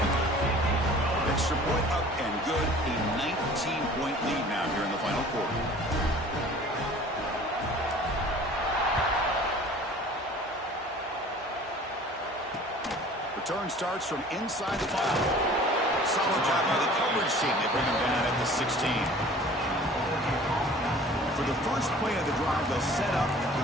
Extra point up and good. A 19-point lead now here in the final quarter. Return starts from inside the 5. Solid job by the coverage team. They bring him down at the 16. For the first play of the drive, they'll set up at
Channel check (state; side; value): normal; both; correlation 0.47